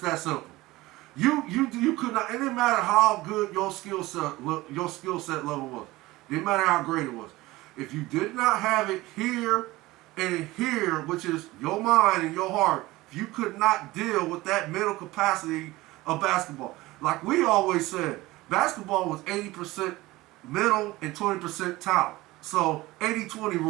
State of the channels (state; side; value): quieter; left; 19.1 dB